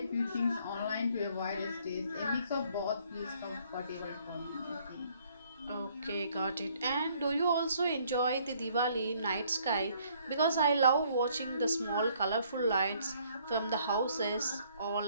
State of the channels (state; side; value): inverted; both; correlation -0.64